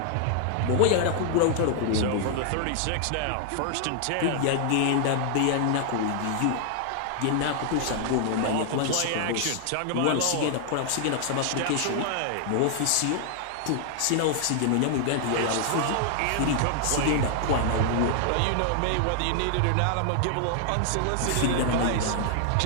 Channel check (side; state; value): both; different; correlation 0.00